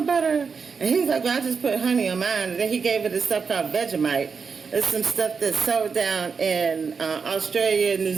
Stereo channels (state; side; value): quieter; left; 5.5 dB